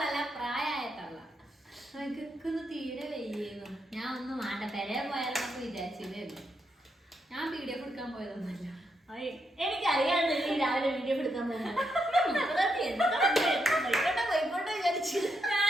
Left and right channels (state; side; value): normal; both; correlation 0.81